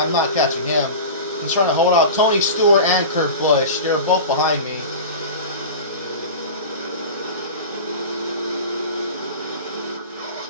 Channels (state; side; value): inverted; both; correlation -0.31